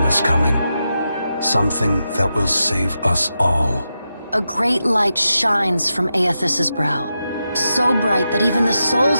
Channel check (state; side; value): inverted; both; correlation -0.88